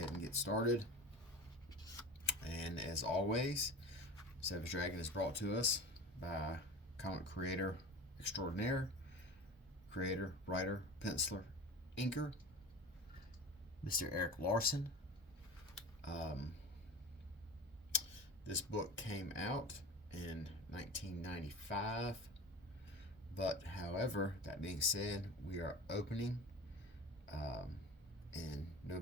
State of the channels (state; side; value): normal; both; correlation 0.32